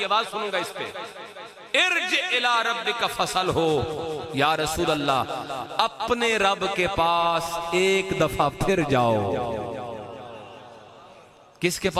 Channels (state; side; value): identical; both; correlation 1.00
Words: آواز سنوں گا اس پہ ارجع الى ربک فصل ہو یا رسول اللہ اپنے رب کے پاس ایک دفعہ پھر جاؤ کس کے